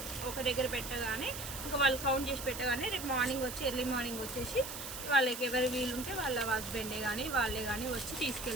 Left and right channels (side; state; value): right; noise; hiss, 8 dB below the sound